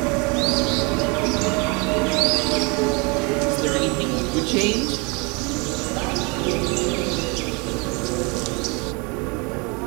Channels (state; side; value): quieter; left; 29.8 dB